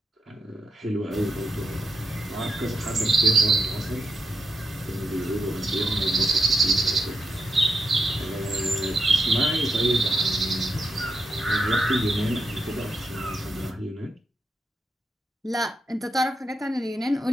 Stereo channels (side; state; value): both; normal; correlation 0.84